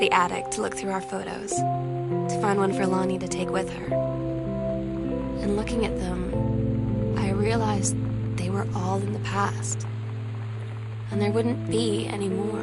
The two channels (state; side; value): identical; both; correlation 1.00